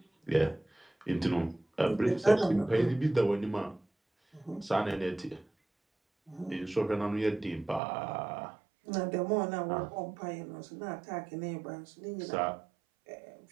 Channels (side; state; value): left; drops out; at 7.8 s